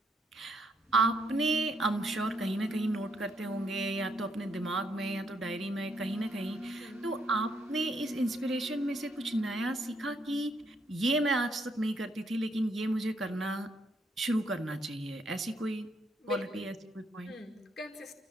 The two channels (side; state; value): both; normal; correlation 0.73